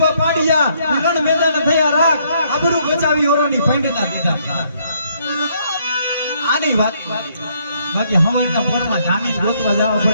પાડિયા રણ મેદાન થયા રાખ આબરૂ બચાવી ઓરોની ફંડતા દીધા. આની વાત બાકી હવાઈના પોરમાં જામીન ગોતવા જવા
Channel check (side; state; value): both; inverted; correlation -0.69